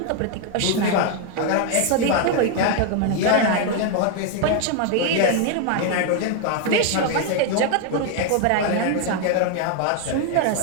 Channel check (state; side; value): different; both; correlation 0.01